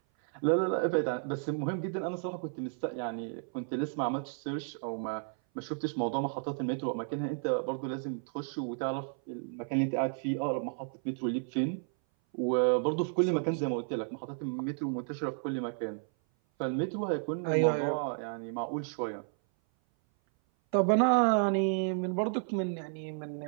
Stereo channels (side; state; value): left; silent; 56 dB below the other